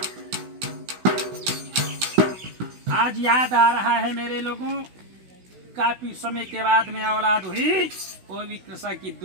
आज याद आ रहा है मेरे लोगों, काफी समय के बाद में औलाद हुई, वो भी कृषा की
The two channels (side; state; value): left; late; 16 ms